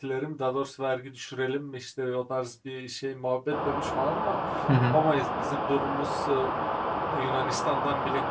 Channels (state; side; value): identical; both; correlation 1.00